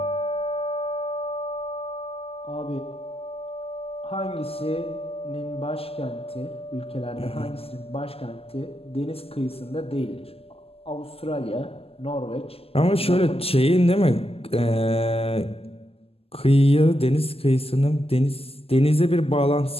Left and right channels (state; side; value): late; right; 0.28 ms